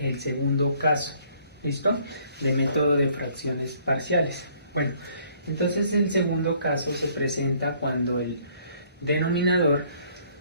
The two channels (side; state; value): both; inverted; correlation -0.62